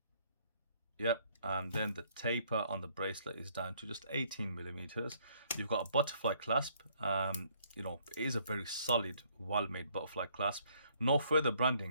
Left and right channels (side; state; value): both; inverted; correlation -0.65